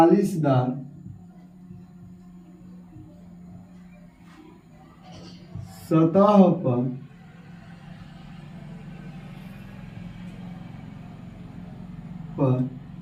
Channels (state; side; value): identical; both; correlation 1.00